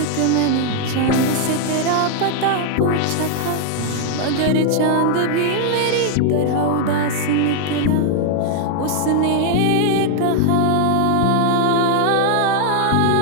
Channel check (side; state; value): both; different; correlation 0.00